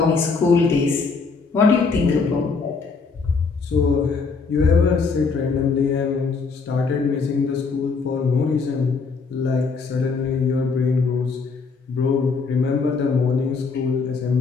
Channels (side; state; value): right; quieter; 4.7 dB